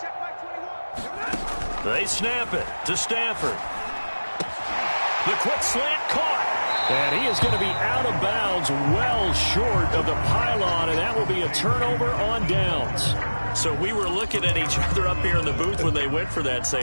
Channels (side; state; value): both; inverted; correlation -1.00